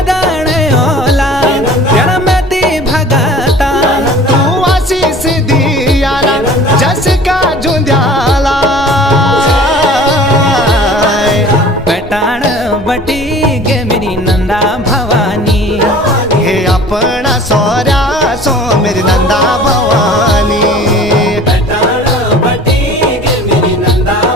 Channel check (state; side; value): normal; both; correlation 0.45